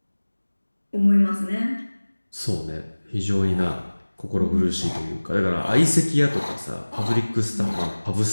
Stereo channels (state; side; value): inverted; both; correlation -1.00